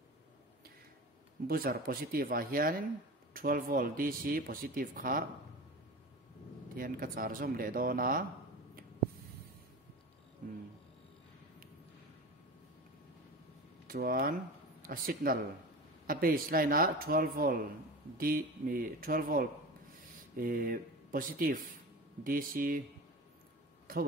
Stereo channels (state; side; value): normal; both; correlation 0.31